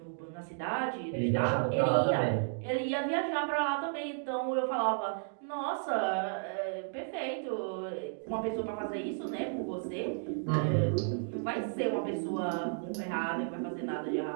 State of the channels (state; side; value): silent; left; digital silence